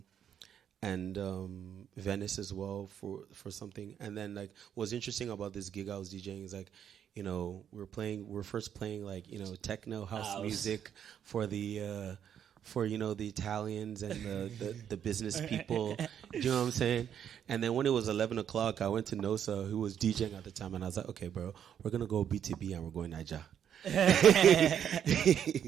Venice as well for something. And then like what's interesting about this gig I was DJing is like, you know, we're first playing like, you know, techno house music for the the Italians and the business people. You know what I'm saying? And then when it was 11 o'clock, I went to Nosa, who was DJing at the time, and I was like, okay, bro, we're going to go BTB and we're going Niger.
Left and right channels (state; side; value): quieter; left; 9.0 dB